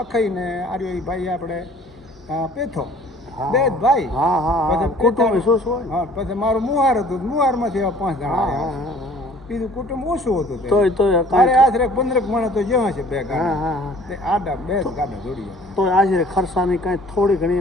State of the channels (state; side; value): normal; both; correlation 0.52